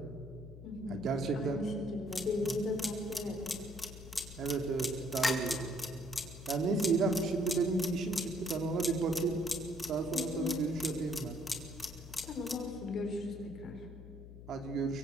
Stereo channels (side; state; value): left; noise; hum, 14 dB below the sound